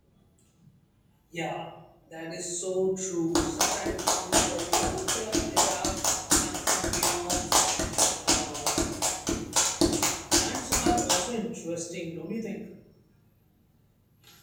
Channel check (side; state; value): both; identical; correlation 1.00